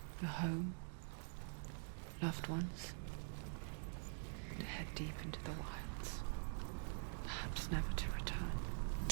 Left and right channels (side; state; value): left; silent; digital silence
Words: Your home, loved ones, and to head deep into the wilds, perhaps never to return.